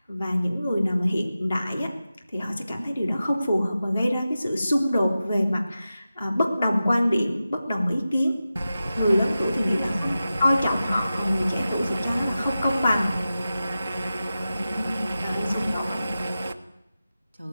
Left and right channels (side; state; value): both; inverted; correlation -0.93